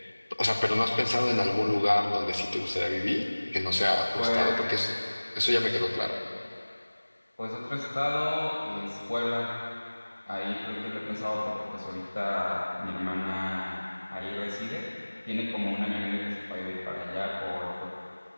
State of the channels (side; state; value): both; inverted; correlation -1.00